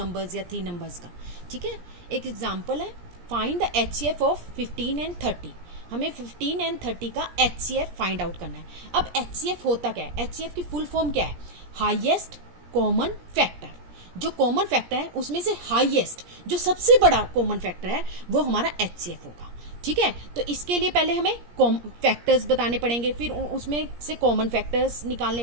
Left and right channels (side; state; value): left; late; 17 ms